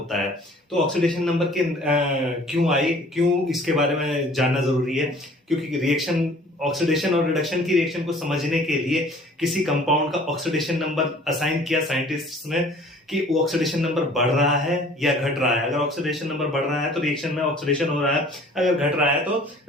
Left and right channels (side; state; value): both; normal; correlation 0.51